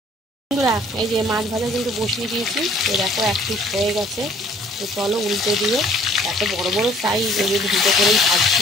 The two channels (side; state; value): both; normal; correlation 0.56